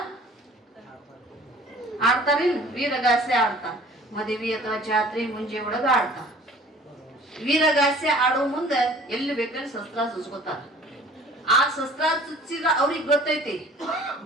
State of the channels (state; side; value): normal; both; correlation 0.50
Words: ಆಡ್ತಾರಿಲ್ಲ, ವೀರಗಾಸೆ ಆಡ್ತಾರ. ಮದುವೆ ಅಥವಾ ಜಾತ್ರೆ ಮುಂಜೆ ಒಳಗ ಆಡ್ತಾರ. ವೀರಗಾಸೆ ಆಡೋ ಮುಂದೆ ಎಲ್ಲಿ ಬೇಕಲ್ಲಿ ಶಸ್ತ್ರ ಚುಚ್ಕೋತಾರ. ಆ ಶಸ್ತ್ರ ಚುಚ್ಚಿದ್ರ ಅವ್ರಿಗೆ ಗೊತ್ತೈತಿ,